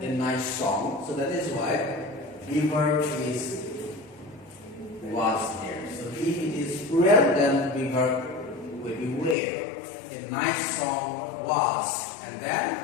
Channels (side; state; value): right; drops out; at 9.3 s